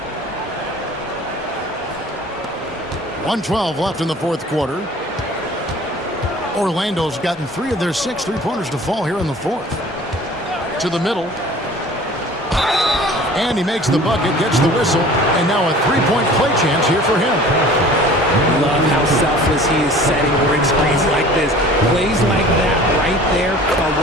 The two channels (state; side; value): normal; both; correlation 0.46